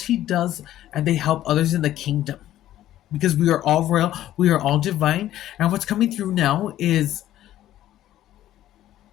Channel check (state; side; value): quieter; right; 13.1 dB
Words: does, and they help others in the kingdom. Because we are all royal, we are all divine. And what's coming through now is